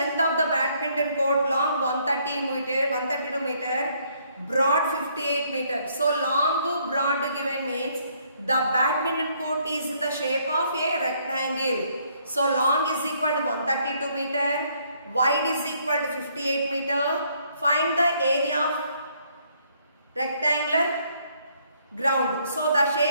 of the badminton court? Long 132 meter, broad 58 meter. So long, broad given means the badminton court is in the shape of a rectangle. So long is equal to 132 meter, wide is equal to 58 meter. Find the area of rectangular ground. So the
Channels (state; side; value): inverted; both; correlation -0.68